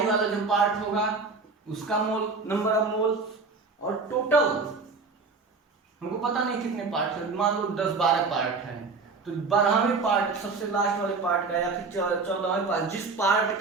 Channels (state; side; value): quieter; left; 4.2 dB